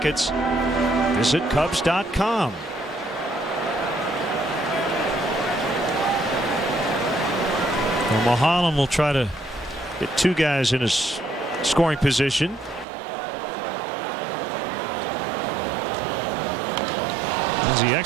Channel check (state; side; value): drops out; left; at 12.9 s